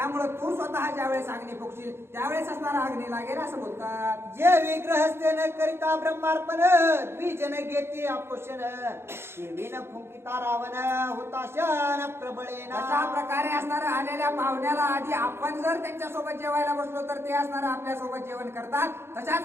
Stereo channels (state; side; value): late; left; 0.12 ms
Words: तू स्वतः ज्यावेळेस अग्नी फुकशील त्यावेळेस असणारा अग्नी लागेल असं बोलतात. जे विग्रहस्ते न करिता ब्रह्मार्पण द्विजन घेते आपोषण विन फुंकिता रावण हुताशन प्रबळेना. अशा प्रकारे असणारा आलेल्या पाहुण्याला आधी आपण जर त्यांच्यासोबत जेवायला बसलो तर ते असणारं आपल्या सोबत जेवण करतात.